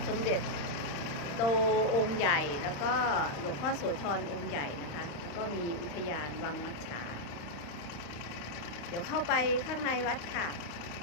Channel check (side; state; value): right; late; 35 ms